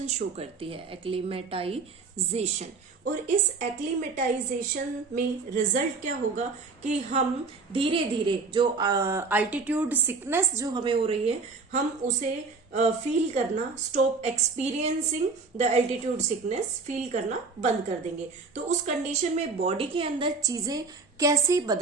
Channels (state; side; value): quieter; left; 4.3 dB